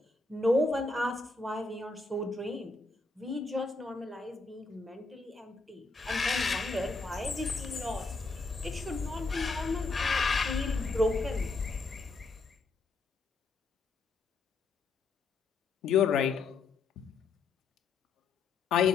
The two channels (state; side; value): quieter; right; 3.9 dB